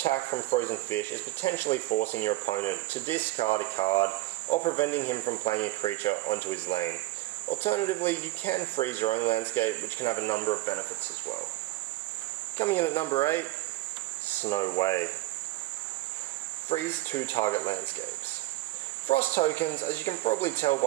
from Frozen Fish is potentially forcing your opponent to discard a card or preventing him from playing a creature onto his lane. Alternatively, you can freeze your own landscape, which can have a number of benefits as well. Coming in at number 8, Snow Way. Freeze 2 target landscapes. Frost tokens, as you can probably tell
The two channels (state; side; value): quieter; left; 18.3 dB